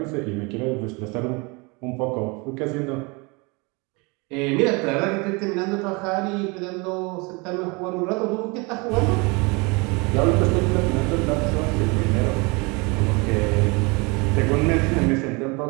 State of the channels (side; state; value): left; quieter; 28.1 dB